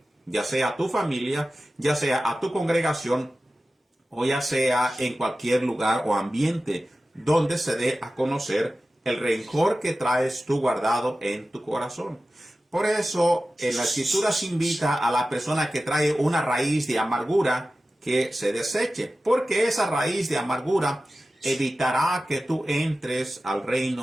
ya sea a tu familia, ya sea a tu congregación, o ya sea en cualquier lugar o ambiente donde se dé a conocer el rencor que traes tú guardado en tu corazón. Por eso, en la Escritura se invita a la persona que trae una raíz de amargura que se deseche, porque esa raíz de amargura evitará que tú entres al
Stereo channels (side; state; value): both; normal; correlation 0.95